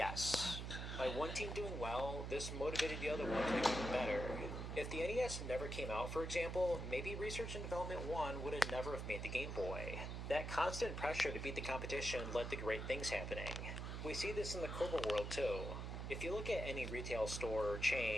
By one team doing well, this motivated the other one to do even better. If the NES never came out, for example, maybe Research and Development 1 would have never have made the Game Boy. That constant pressure to beat the competition led to great things happening. We see this in the corporate world too. If you look at any retail store or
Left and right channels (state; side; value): noise; right; hum, 5 dB below the sound